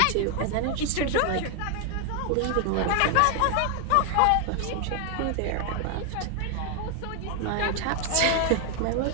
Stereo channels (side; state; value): both; different; correlation 0.01